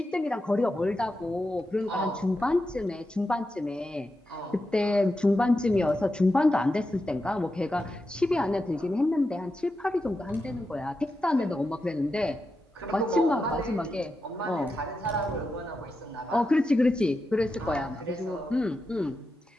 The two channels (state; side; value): normal; both; correlation 0.88